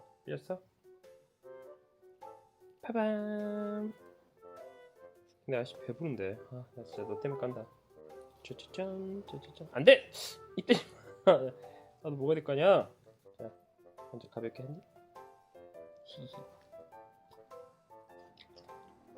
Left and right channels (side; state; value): both; identical; correlation 1.00